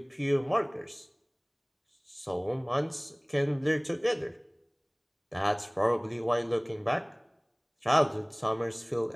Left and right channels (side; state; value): both; identical; correlation 1.00